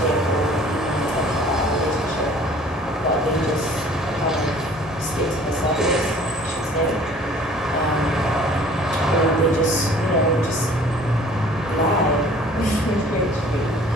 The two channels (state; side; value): normal; both; correlation 0.52